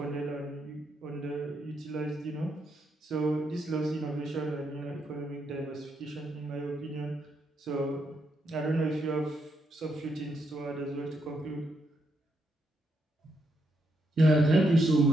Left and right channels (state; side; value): normal; both; correlation 0.78